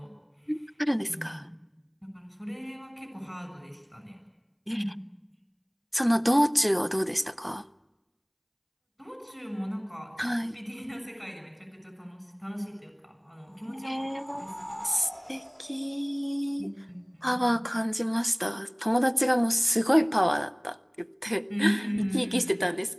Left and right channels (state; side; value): identical; both; correlation 1.00